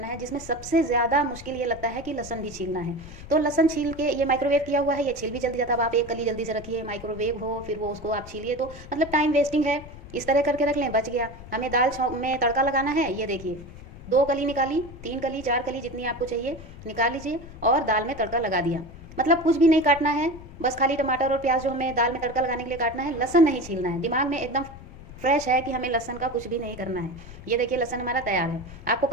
है, जिसमें सबसे ज़्यादा मुश्किल ये लगता है कि लहसुन भी छीलना है। तो लहसुन छील के, ये माइक्रोवेव किया हुआ है, ये छील भी जल्दी जाता है। अब आप एक कली जल्दी से रखिए, माइक्रोवेव हो फिर वो उसको आप छीलिए, तो मतलब टाइम वेस्टिंग है। इस तरह करके रख लें, बच गया। हमें दाल में तड़का लगाना है, ये देखिए 2 कली निकाली, 3 कली 4 कली जितनी आपको चाहिए निकाल लीजिए और दाल में तड़का लगा दिया। मतलब कुछ भी नहीं काटना है, बस खाली टमाटर और प्याज जो हमें दाल में तड़का लगाने के लिए काटना है, लहसुन नहीं छीलना है। दिमाग में एकदम फ्रेश है कि हमें लहसुन का कुछ भी नहीं करना है। ये देखिए लहसुन हमारा तैयार है। आपको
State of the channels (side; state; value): left; noise; rumble, 16 dB below the sound